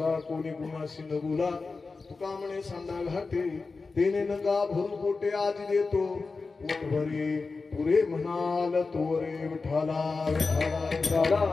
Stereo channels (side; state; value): right; quieter; 4.1 dB